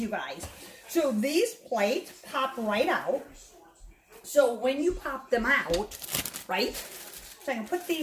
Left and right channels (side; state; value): both; identical; correlation 1.00